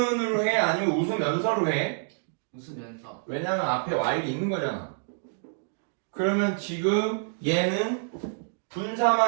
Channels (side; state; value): left; silent; digital silence